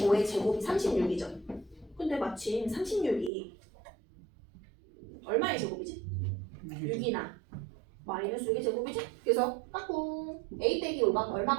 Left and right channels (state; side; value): drops out; left; at 3.3 s